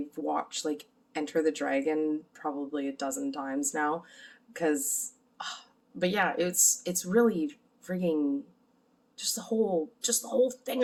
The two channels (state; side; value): identical; both; correlation 1.00